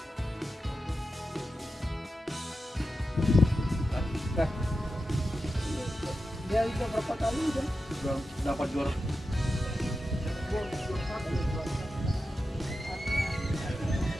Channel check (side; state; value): both; normal; correlation 0.91